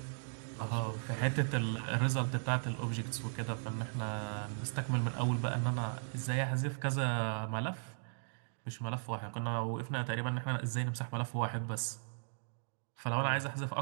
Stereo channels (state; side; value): silent; left; digital silence